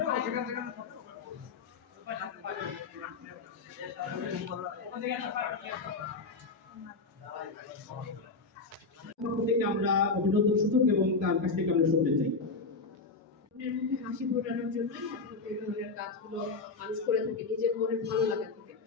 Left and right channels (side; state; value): right; quieter; 4.1 dB